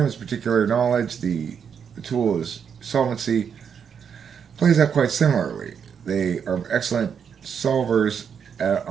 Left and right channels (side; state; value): left; quieter; 7.3 dB